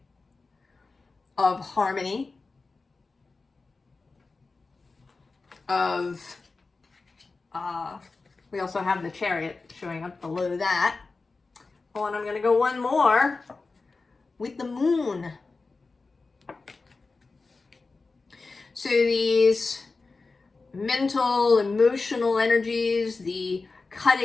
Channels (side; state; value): right; quieter; 3.9 dB